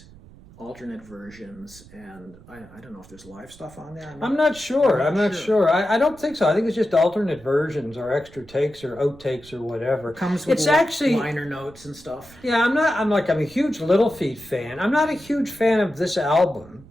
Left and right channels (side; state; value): right; noise; rumble, 22 dB below the sound